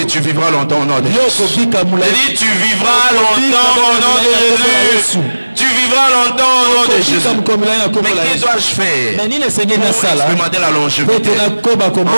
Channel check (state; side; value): inverted; both; correlation -1.00